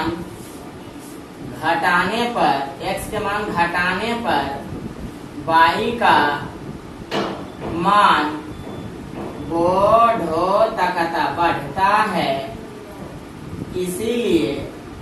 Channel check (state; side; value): identical; both; correlation 1.00